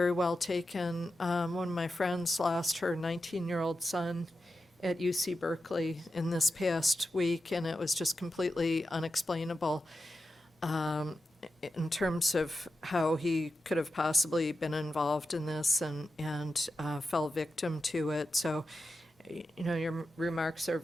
well taken. One of my friends lost her 19-year-old son at UC Berkeley in this past week, and it was just completely unexplainable in terms of how he could have possibly been involved in this and fell victim to it. So, you know, your remarks are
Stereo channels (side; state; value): both; normal; correlation 0.90